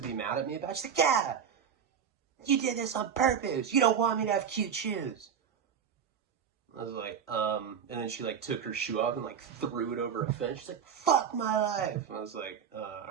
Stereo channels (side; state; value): left; quieter; 7.6 dB